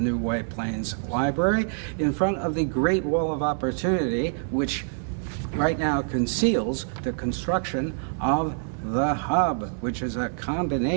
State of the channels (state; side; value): silent; left; digital silence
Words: White Plains Library in front of the Great Wall of Opportunity, which right now conceals the construction of the hub, which is a